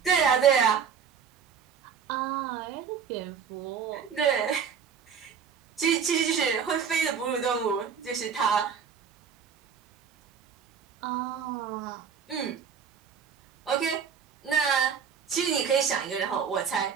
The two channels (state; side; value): quieter; left; 7.0 dB